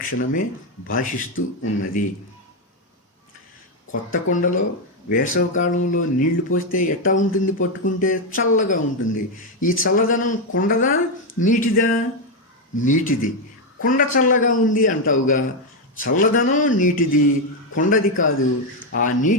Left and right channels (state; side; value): normal; both; correlation 0.05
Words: భాషిస్తూ ఉన్నది. కొత్త కొండలో వేసవికాలంలో నీళ్లు పోస్తే ఎట్టా ఉంటుంది? పట్టుకుంటే చల్లగా ఉంటుంది. ఈ చల్లదనం కొండదా నీటిదా? నీటిది. కొండ చల్లగా ఉంది అంటావుగా, చల్లదనం నీటిది, కొండది కాదు. ఆ